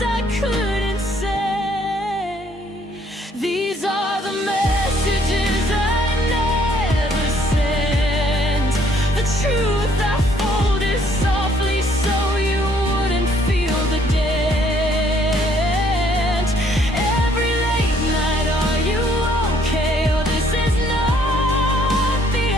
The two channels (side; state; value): both; normal; correlation 0.65